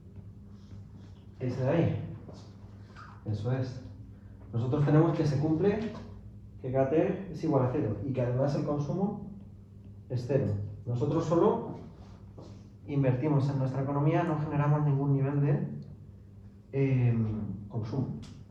Ese de ahí. Eso es. Nosotros tenemos que se cumple que KT es igual a 0 y que además el consumo es 0. Nosotros solo invertimos en nuestra economía, no generamos ningún nivel de consumo.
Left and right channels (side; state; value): both; identical; correlation 1.00